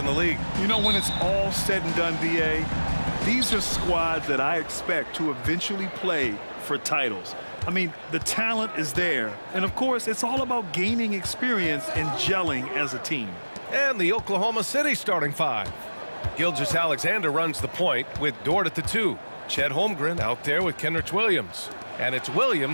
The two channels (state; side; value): inverted; both; correlation -1.00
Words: the league. You know, when it's all said and done, BA, these are squads that I expect to eventually play for titles. I mean, the talent is there. And, of course, it's all about gaining experience and gelling as a team. And the Oklahoma City starting five. Gilgeous-Alexander runs the point with Dort at the 2. Chet Holmgren out there with Kenrich Williams. And it's